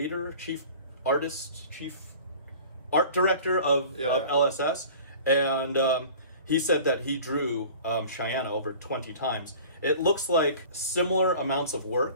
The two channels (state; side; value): inverted; both; correlation -0.43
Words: art director of LSS, and he said that he drew Chyenne over 20 times. It looks like similar amounts of